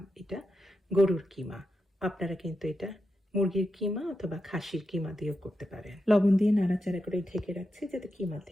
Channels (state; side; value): normal; both; correlation 0.88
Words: এটা গরুর কিমা। আপনারা কিন্তু এটা মুরগির কিমা অথবা খাসির কিমা দিয়েও করতে পারেন। লবণ দিয়ে নাড়াচাড়া করে ঢেকে রাখছি যাতে কিমা